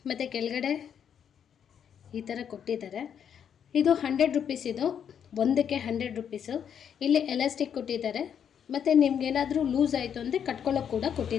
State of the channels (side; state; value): right; quieter; 8.3 dB